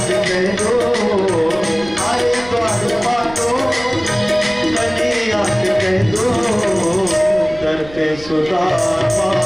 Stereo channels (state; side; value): noise; right; rumble, 19 dB below the sound